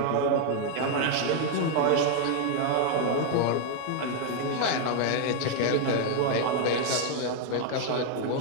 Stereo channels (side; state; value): both; different; correlation 0.00